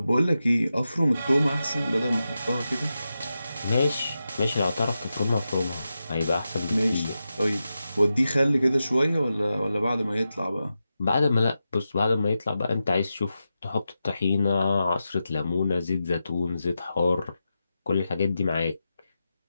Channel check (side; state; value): both; inverted; correlation -0.90